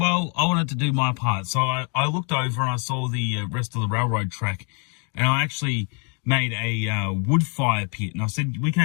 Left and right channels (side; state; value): right; quieter; 37.6 dB